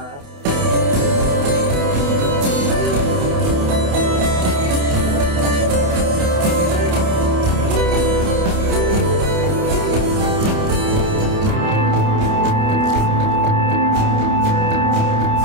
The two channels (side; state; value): left; late; 28 ms